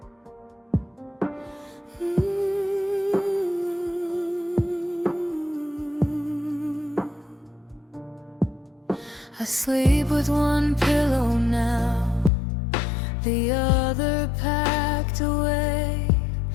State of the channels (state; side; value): drops out; right; at 12.3 s